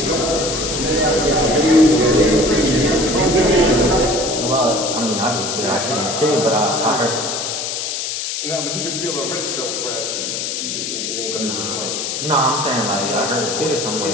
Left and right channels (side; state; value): left; noise; hiss, 3 dB below the sound